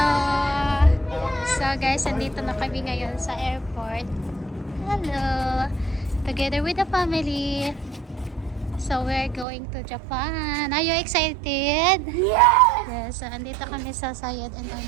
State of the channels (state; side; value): drops out; left; at 9.5 s